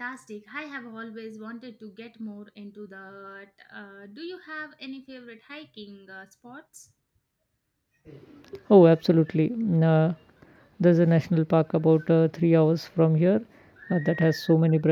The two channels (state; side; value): identical; both; correlation 1.00